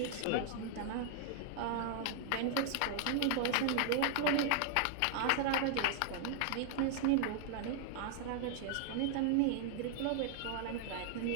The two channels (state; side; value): different; both; correlation 0.00